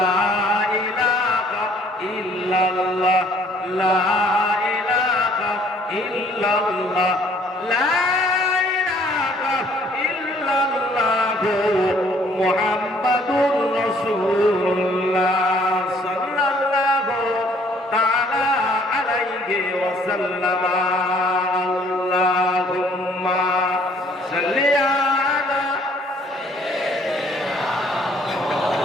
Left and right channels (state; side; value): normal; both; correlation 0.60